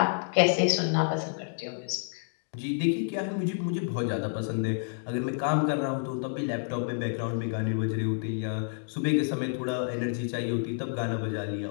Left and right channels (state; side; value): silent; right; digital silence